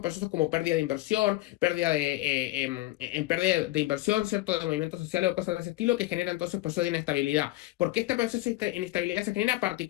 procesos como pérdida de inversión, en pérdida de inversión, ¿cierto?, de movimientos sociales o cosas de ese estilo, que genera entonces procesos de inestabilidad. ¿Por qué este proceso de inestabilidad se genera?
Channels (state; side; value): quieter; right; 18.4 dB